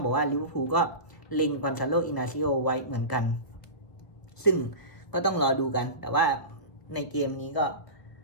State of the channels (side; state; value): right; late; 1.4 ms